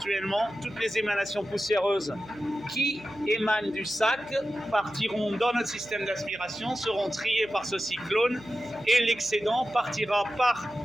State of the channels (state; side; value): noise; right; hum, 22 dB below the sound